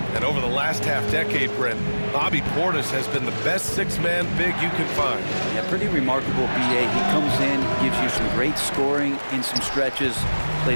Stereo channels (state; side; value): inverted; both; correlation -1.00